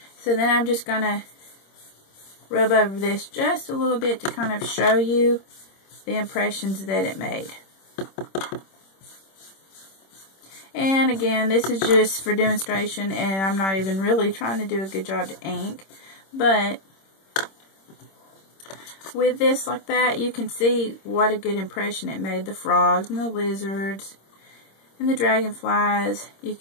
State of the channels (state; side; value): late; right; 26 ms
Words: So then I'm just going to rub over this just a little bit to kind of show you the impressions that it made. And again, this is just for demonstration, and I'm not even really trying to do a good job to ink. But with this like that, you can see what a good impression it made. The frogs and the lizards and the dragonflies, you